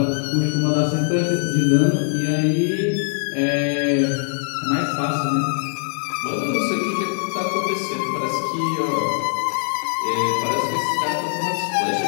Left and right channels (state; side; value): silent; right; 57 dB below the other